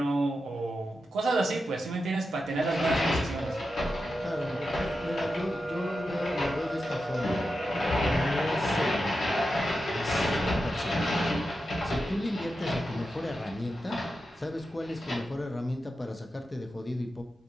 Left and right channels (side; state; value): both; normal; correlation 0.90